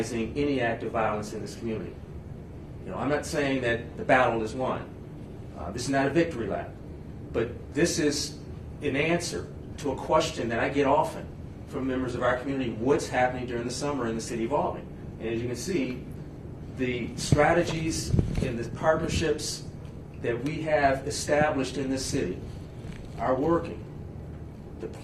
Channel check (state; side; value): identical; both; correlation 1.00